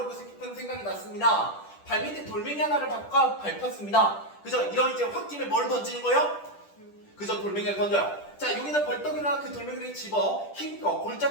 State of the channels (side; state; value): right; late; 10 ms